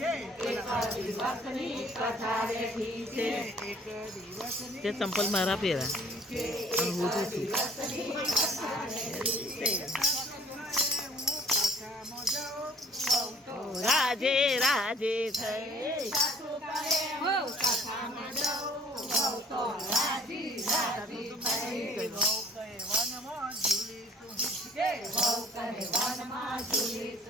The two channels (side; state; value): both; normal; correlation 0.55